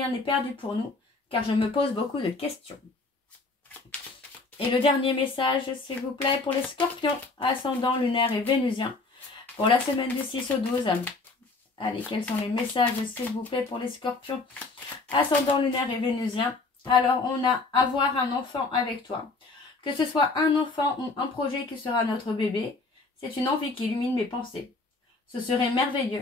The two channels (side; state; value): right; quieter; 3.6 dB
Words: n'est perdu pour nous, car je me pose beaucoup de questions. Et le dernier message, s'il vous plaît, pour les scorpions, ascendant lunaire et vénusien, pour la semaine du 6 au 12. Allez, quels sont les messages, s'il vous plaît, pour les scorpions, ascendant lunaire et vénusien? Alors, on a avoir un enfant avec toi. Que ce soit un enfant ou un projet qui sera notre bébé, c'est une envie qui illumine mes pensées. Ce serait